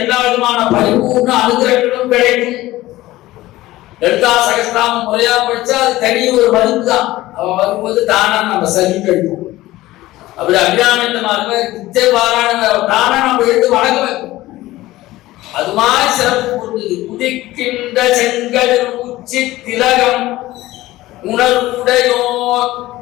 விதமான பரிபூர்ண அனுகிரகங்களும் கிடைக்கும். லலிதா சகஸ்ரநாமம் முறையா படிச்சா அது தனி ஒரு மருந்து தான். அவ வரும்போது தானா நம்ம சரி கிடைக்கும். அப்படி அபிராமித்தமாக நித்திய பாராயண தானா நம்ம எடுத்து வணங்க வைக்கும். அது மாதிரி சிறப்பு பொருந்தது. உதிக்கின்ற செங்கதிர் உச்சி திலகம் உணர்வுடையோர்.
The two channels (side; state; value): right; quieter; 17.0 dB